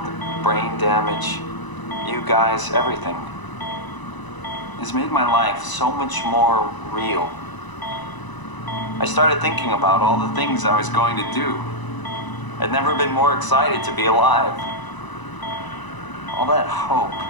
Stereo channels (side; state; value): right; late; 1.0 ms